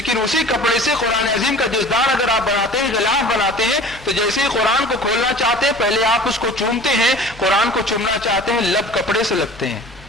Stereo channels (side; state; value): both; normal; correlation 0.43